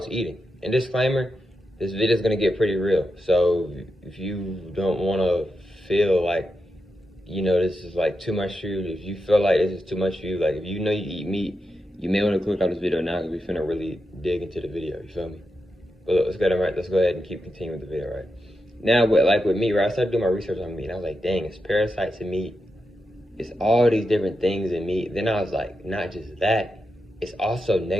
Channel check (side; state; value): both; normal; correlation 0.87